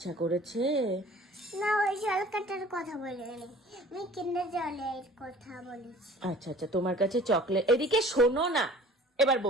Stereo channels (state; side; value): normal; both; correlation 0.48